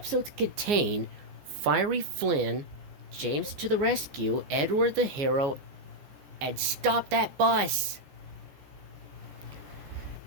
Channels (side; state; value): left; late; 14 ms